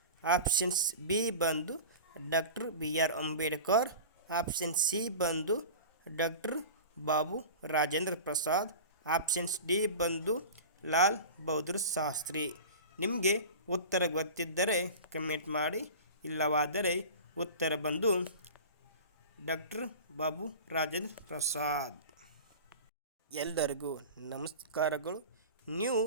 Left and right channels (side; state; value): both; inverted; correlation -0.34